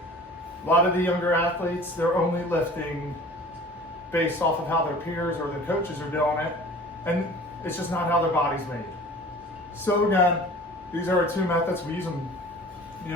lot of the younger athletes, they're only lifting based off of how their peers or their coaches are doing it, and it's just not how their body's made. So again, these are our 2 methods. We use them,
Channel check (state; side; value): normal; both; correlation 0.44